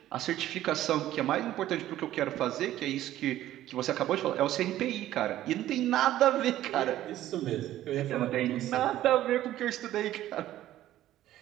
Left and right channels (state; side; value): quieter; left; 13.6 dB